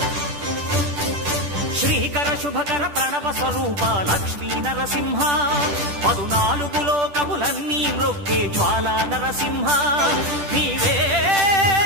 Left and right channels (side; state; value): left; late; 10 ms